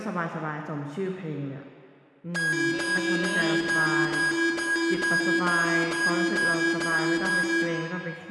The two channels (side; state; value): both; identical; correlation 1.00